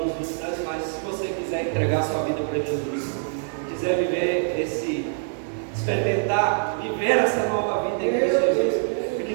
visitantes, mas se você quiser entregar sua vida para Jesus, quiser viver experimentar, viver essa nova vida em Cristo Jesus, e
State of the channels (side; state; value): left; silent; digital silence